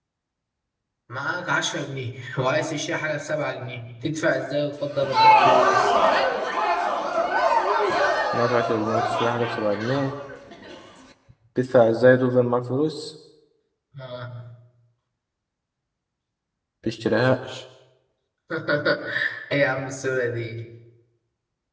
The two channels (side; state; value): both; identical; correlation 1.00